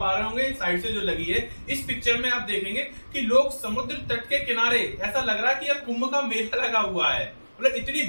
रहे होंगे साइड से जो लगी है, इस पिक्चर में आप देखेंगे कि लोग समुद्र तट के किनारे, ऐसा लग रहा है कि यह कुंभ का मेला लगा हुआ है। मतलब इतनी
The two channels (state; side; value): inverted; both; correlation -1.00